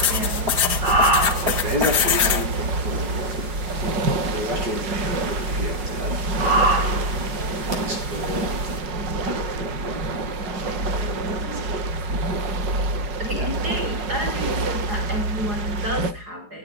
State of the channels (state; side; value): late; left; 4.8 ms